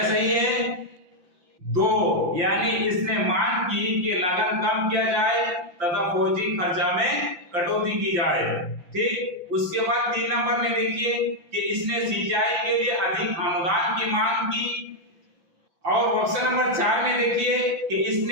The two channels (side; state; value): left; late; 5.8 ms